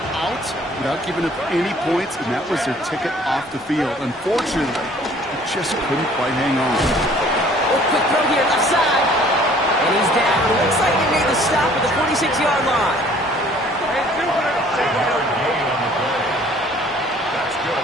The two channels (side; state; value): both; normal; correlation 0.55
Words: out without giving up any points, and that was their ticket off the field. Unfortunately, they just couldn't quite hang on. Oh, quick throw here, left side. And he's down. Looks like they made the stop at the 46-yard line. That's good for the Jaguars.